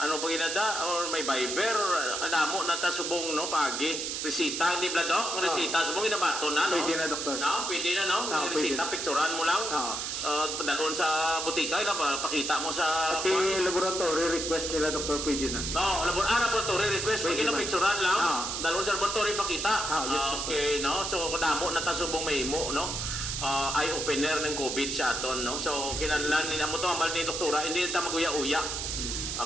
pa ginada, or may Viber, or adamo na ta subong, no? Pagi. Resita, hindi ba, Dok? Resita, subong inabato na, no? Pwede na, Doktor. No? Pwede na, no? Pwede Resita, na. picturean mo lang. Padalon sa butika, pakita mo sa... Pati laboratory request nila, Doktor, pwede na. No, laboratory request, Pwede pwede na ba? picturean lang. Dalawang sa laboratory pakita. Yes, Doctor. Okay, no? So, kadamo na tasubong may imo, no? Eye-opener ng COVID sa aton, no? So, kinahanglan nila mo to, ang ni doktora, hindi na maguya-uya.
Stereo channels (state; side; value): noise; right; hiss, 3 dB below the sound